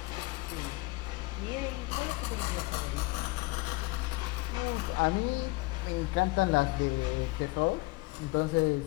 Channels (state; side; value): quieter; right; 23.2 dB